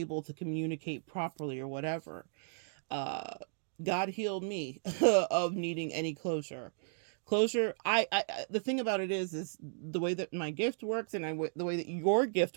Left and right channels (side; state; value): left; silent; digital silence